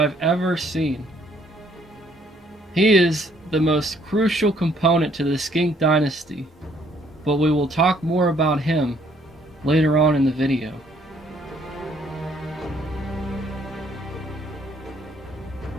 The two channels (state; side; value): normal; both; correlation 0.64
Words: ever seen. He is the most crucial component to the Skink Dynasty, but we will talk more about him later on in the video.